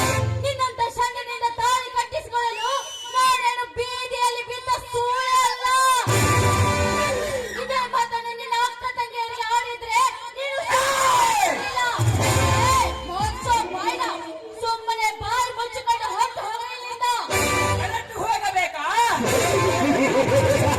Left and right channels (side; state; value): both; identical; correlation 1.00